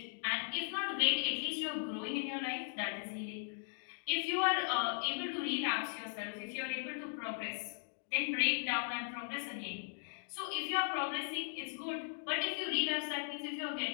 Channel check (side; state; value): right; silent; digital silence